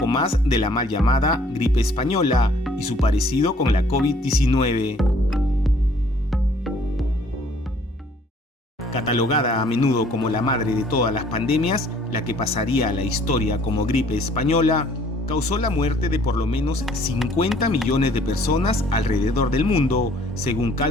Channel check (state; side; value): normal; both; correlation 0.59